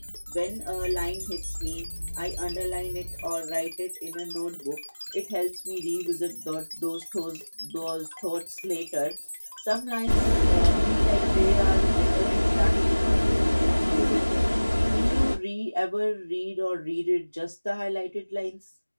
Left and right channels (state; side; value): inverted; both; correlation -1.00